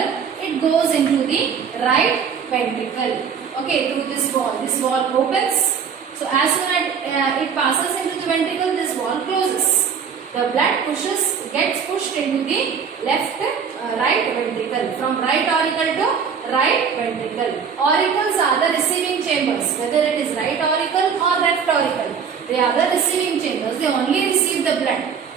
it goes into the right ventricle. Okay, through this wall. This wall opens. So as soon as it passes into the ventricle, this wall closes. The blood gets pushed into the right ventricle, from right auricle to right ventricle. Auricles are the receiving chambers, whether it is right auricle or left auricle. They are the receiving chambers. They only receive the blood.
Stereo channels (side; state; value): left; quieter; 6.7 dB